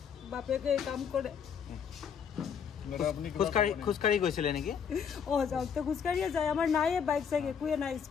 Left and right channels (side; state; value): right; quieter; 7.3 dB